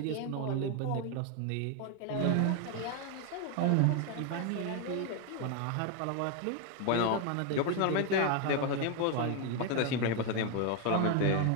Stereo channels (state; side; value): different; both; correlation 0.01